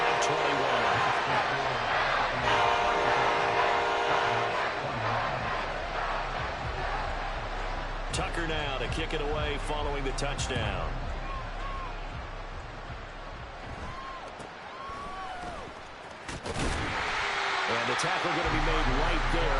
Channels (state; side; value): identical; both; correlation 1.00